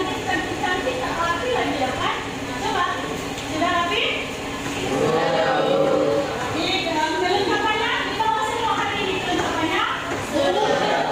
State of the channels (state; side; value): identical; both; correlation 1.00